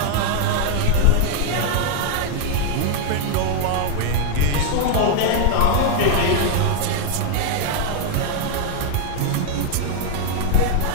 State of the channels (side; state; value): both; different; correlation 0.00